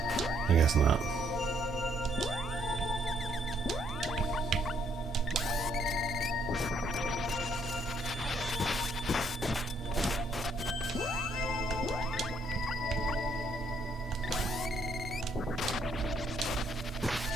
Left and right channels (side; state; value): both; normal; correlation 0.69